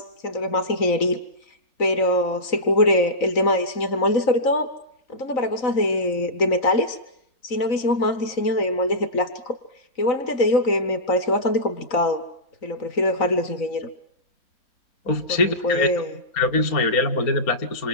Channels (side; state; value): right; late; 3.9 ms